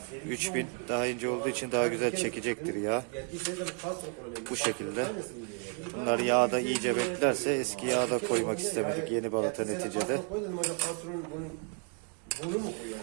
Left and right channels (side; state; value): left; quieter; 39.6 dB